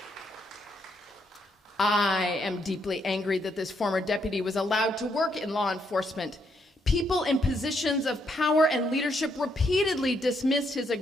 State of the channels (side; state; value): both; normal; correlation 0.75